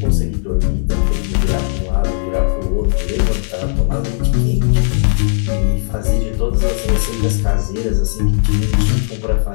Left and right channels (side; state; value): right; silent; digital silence